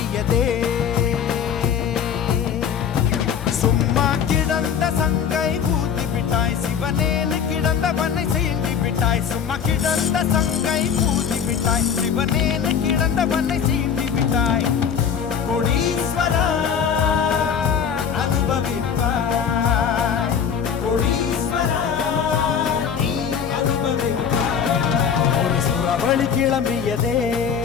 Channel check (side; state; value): right; quieter; 7.5 dB